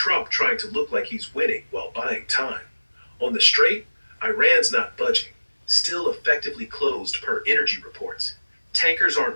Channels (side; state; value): both; inverted; correlation -1.00